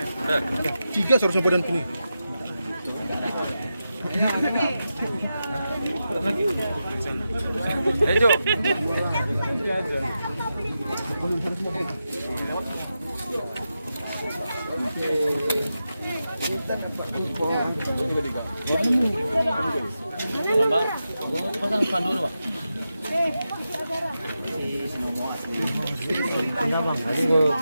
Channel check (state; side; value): inverted; both; correlation -0.89